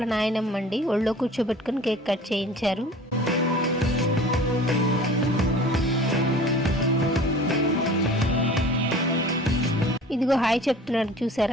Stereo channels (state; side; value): normal; both; correlation 0.44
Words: నాయనమ్మ అండి, ఒళ్ళో కూర్చోబెట్టుకుని కేక్ కట్ చేయించారు. ఇదిగో హాయ్ చెప్తున్నాడు